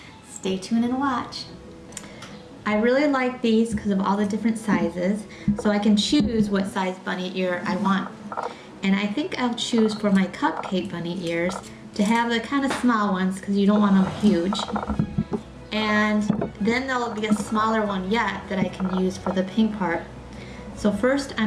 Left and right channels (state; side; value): identical; both; correlation 1.00